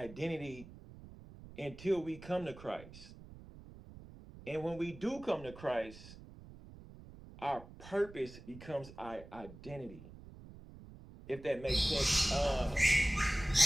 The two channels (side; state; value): right; noise; rumble, 17 dB below the sound